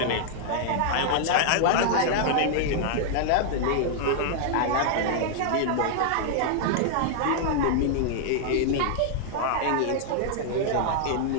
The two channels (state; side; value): different; both; correlation -0.01